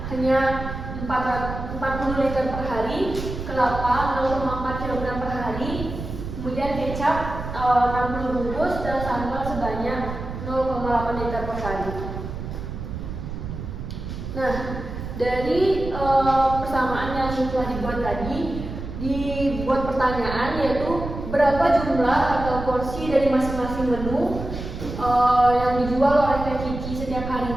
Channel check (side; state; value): right; noise; rumble, 7 dB below the sound